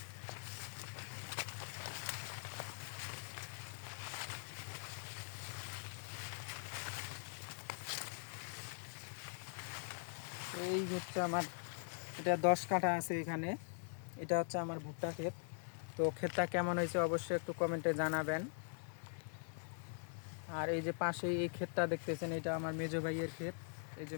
এই হচ্ছে আমার, এটা 10 কাঠা আছে এখানে। এটা হচ্ছে আমার ভুট্টা ক্ষেত। তো ক্ষেতটা কেমন হয়েছে অবশ্যই একটু কমেন্টে জানাবেন। আর এই যে পাশেই এই ক্ষেতটা দেখতেছেন, এটা আমার মেজো ভাইয়ের ক্ষেত। এই যে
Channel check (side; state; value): right; silent; digital silence